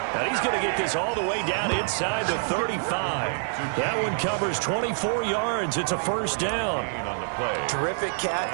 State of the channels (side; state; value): left; silent; digital silence